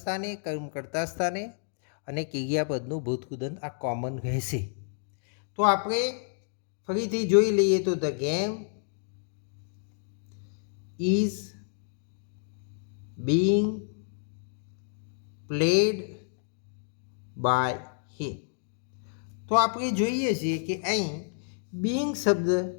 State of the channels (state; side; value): silent; right; digital silence